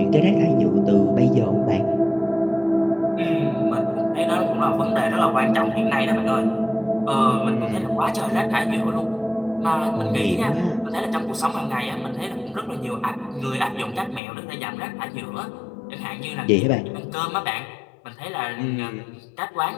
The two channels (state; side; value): drops out; right; at 14.2 s